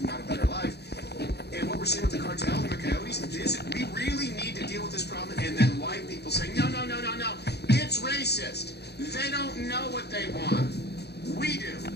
out a better life. And what we're seeing with the cartels and the coyotes is we really need to deal with this problem. And then white people saying, no, it's racist. They don't know what they want. We do.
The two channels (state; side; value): late; right; 0.48 ms